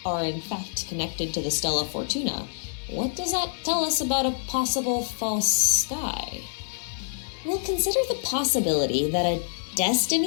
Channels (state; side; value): silent; right; 60 dB below the other